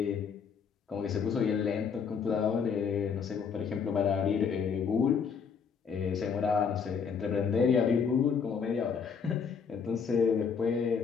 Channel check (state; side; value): quieter; right; 6.3 dB